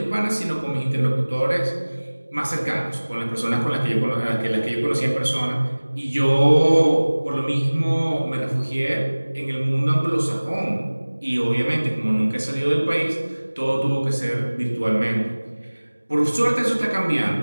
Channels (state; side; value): inverted; both; correlation -1.00